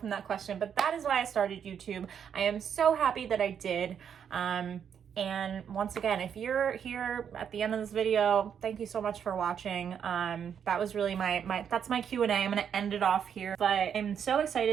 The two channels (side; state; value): left; quieter; 8.0 dB